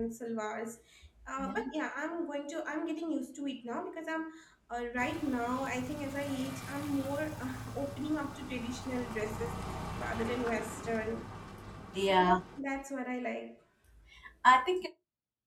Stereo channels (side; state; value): both; identical; correlation 1.00